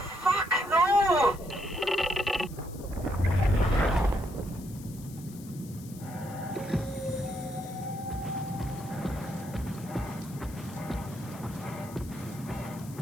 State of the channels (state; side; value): noise; left; hiss, 19 dB below the sound